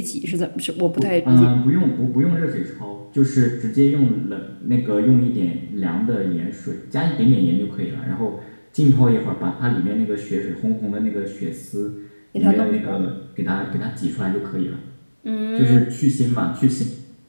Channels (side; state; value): both; inverted; correlation -1.00